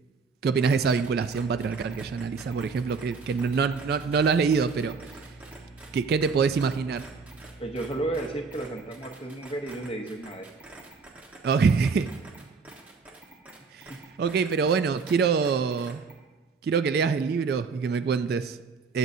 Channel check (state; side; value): quieter; left; 5.1 dB